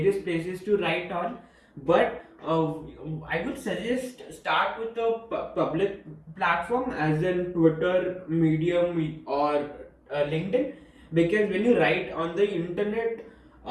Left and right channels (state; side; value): identical; both; correlation 1.00